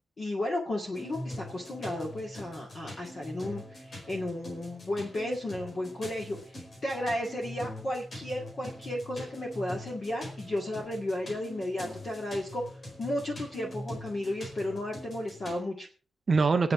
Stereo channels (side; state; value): both; normal; correlation 0.89